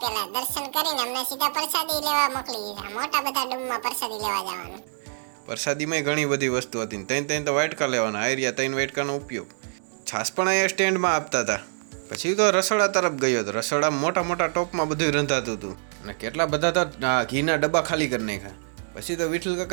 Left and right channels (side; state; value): left; silent; digital silence